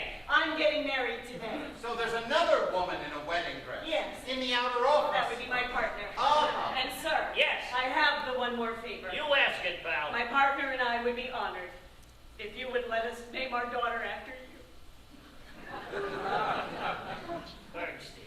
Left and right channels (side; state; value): both; identical; correlation 1.00